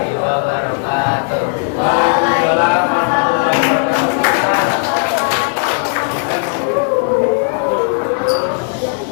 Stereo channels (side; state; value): right; silent; 58 dB below the other